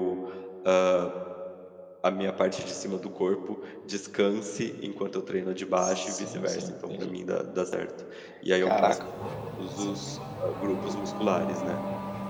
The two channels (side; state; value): both; identical; correlation 1.00